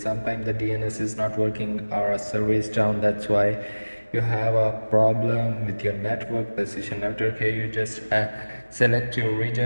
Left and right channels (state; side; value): inverted; both; correlation -1.00